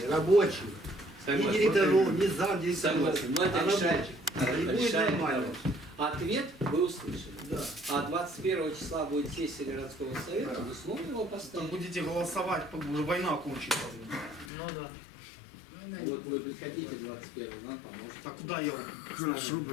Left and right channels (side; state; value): right; drops out; at 14.5 s